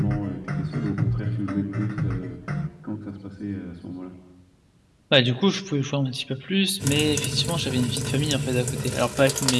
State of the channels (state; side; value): identical; both; correlation 1.00